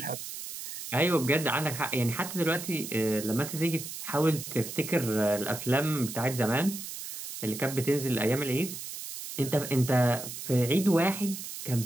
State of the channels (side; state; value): right; noise; hiss, 9 dB below the sound